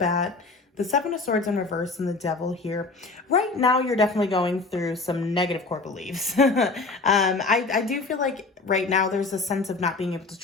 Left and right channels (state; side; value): quieter; right; 3.7 dB